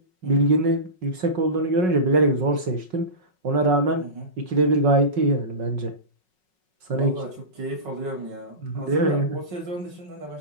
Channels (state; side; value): late; left; 5.4 ms